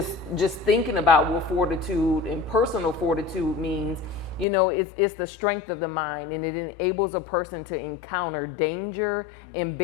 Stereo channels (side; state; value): right; drops out; at 4.5 s